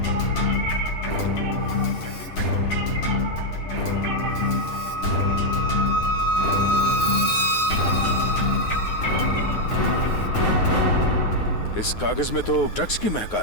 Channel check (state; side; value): late; right; 9.6 ms